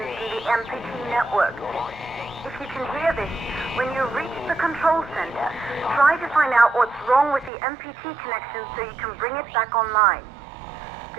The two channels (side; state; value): left; drops out; at 7.5 s